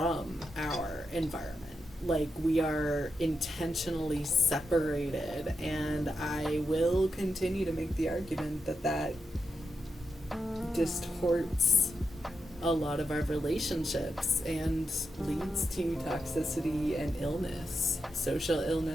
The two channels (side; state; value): both; normal; correlation 0.86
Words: our environment. Like, we are intentionally separated, and I will continue to make the argument that that distorts a lot of our relationships and leads to toxicity and illness, social